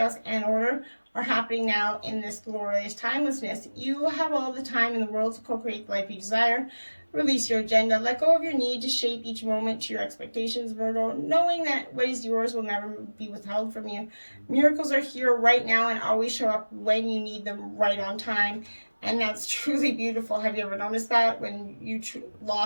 and order are happening now in this glorious timelessness? You have all the time in the world to co-create the life you desire. Release your agenda. Let go of your need to shape each moment to your expectations, Virgo, knowing that what is yours will never be withheld from you. Miracles are here right now and always show up when you need them, right on time. And that's truly beautiful. Have you ever noticed that? When you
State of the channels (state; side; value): inverted; both; correlation -1.00